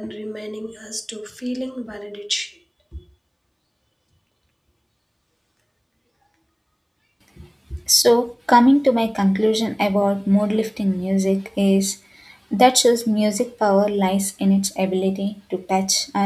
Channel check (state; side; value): identical; both; correlation 1.00